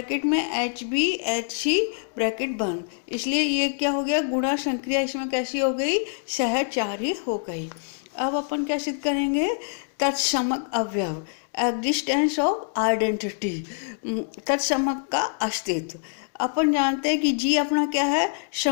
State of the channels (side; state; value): right; silent; 62 dB below the other